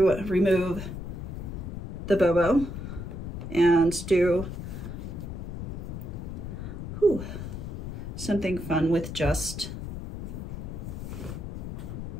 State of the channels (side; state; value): left; noise; rumble, 7 dB below the sound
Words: remove the Bobo and do something fun with just